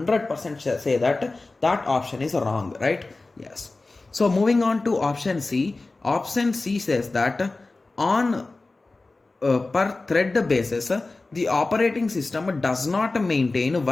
say that that option is wrong, right? Yes. So moving on to option C. Option C says that on per thread basis, the operating system does not maintain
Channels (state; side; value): quieter; right; 3.3 dB